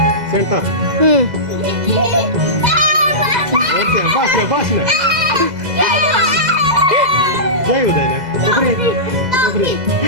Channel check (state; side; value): late; left; 2.0 ms